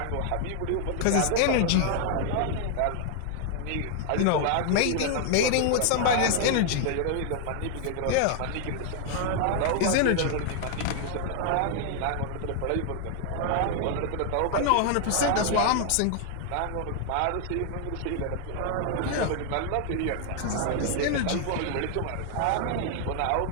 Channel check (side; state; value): both; different; correlation 0.00